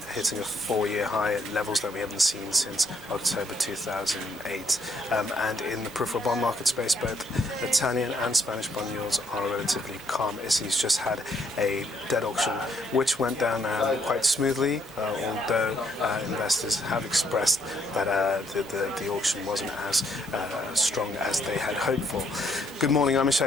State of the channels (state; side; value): normal; both; correlation 0.69